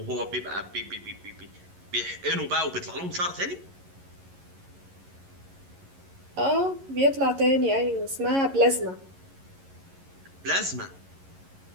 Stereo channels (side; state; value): left; late; 11 ms